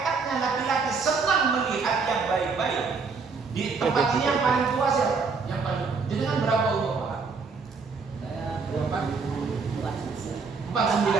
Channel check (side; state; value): left; quieter; 4.8 dB